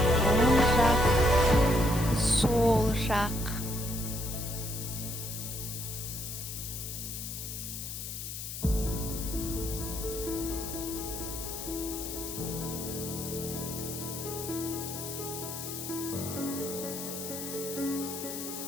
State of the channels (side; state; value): left; noise; hiss, 7 dB below the sound